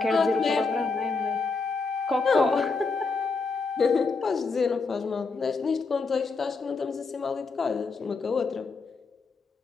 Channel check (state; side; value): quieter; right; 4.3 dB